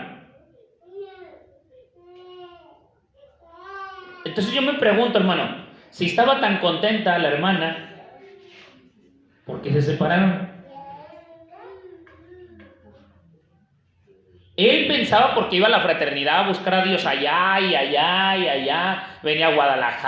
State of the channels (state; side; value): identical; both; correlation 1.00